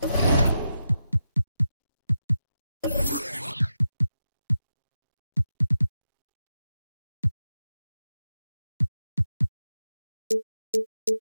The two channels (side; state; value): both; inverted; correlation -0.88